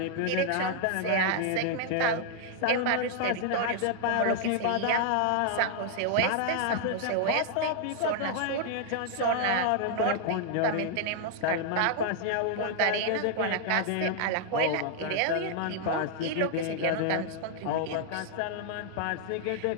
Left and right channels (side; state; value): both; different; correlation 0.00